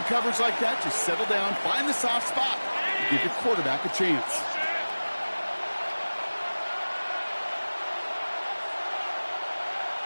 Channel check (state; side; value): inverted; both; correlation -1.00